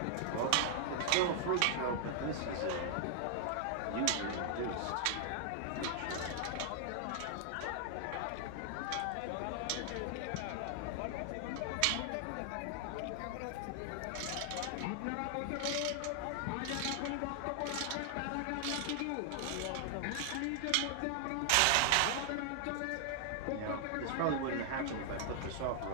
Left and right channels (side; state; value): both; different; correlation 0.00